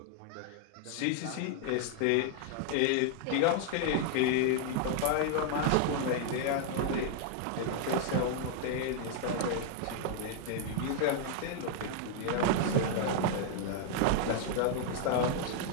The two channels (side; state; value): both; different; correlation 0.00